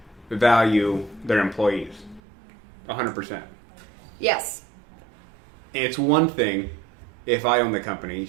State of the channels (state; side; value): drops out; left; at 2.2 s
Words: value their employees. 100%. Yes. It's one thing if I own the company, you